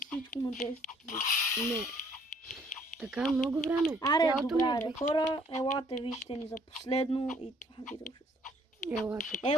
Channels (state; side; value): normal; both; correlation 0.62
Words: всичко на 10. Не. Така много време. Аре, Цялото добре, ми е аре. Хора, елате, вижте ни за последно и това видео ще стане. Ела тук.